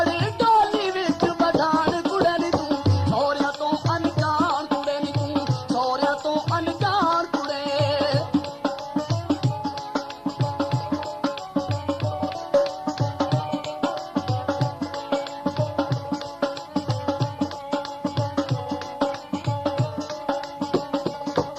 ਡੋਲੀ ਵਿੱਚ ਬਠਾਣ ਕੁੜੇ ਨੀ ਤੂੰ, ਸਹੁਰਿਆਂ ਤੋਂ ਅਣਜਾਣ ਕੁੜੇ ਨੀ ਤੂੰ, ਸਹੁਰਿਆਂ ਤੋਂ ਅਣਜਾਣ ਕੁੜੇ।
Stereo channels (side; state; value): both; identical; correlation 1.00